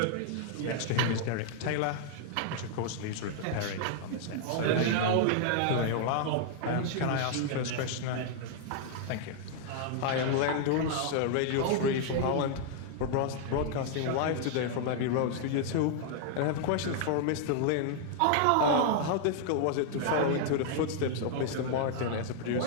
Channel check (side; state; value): both; different; correlation -0.01